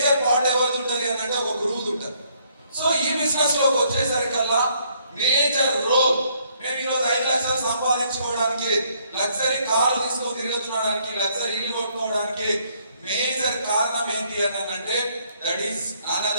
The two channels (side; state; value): both; inverted; correlation -0.68